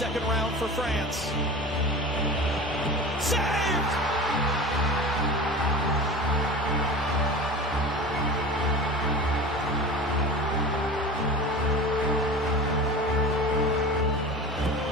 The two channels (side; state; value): both; normal; correlation 0.34